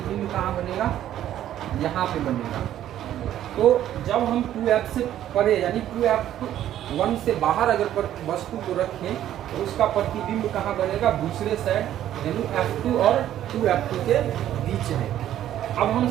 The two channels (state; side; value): quieter; left; 11.9 dB